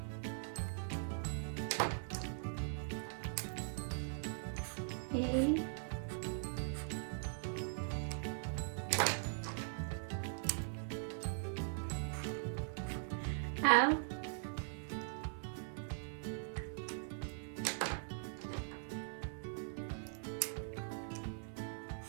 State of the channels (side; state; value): left; silent; 50 dB below the other